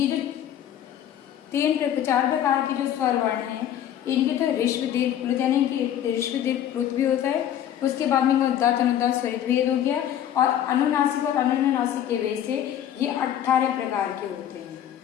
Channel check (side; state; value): right; quieter; 10.6 dB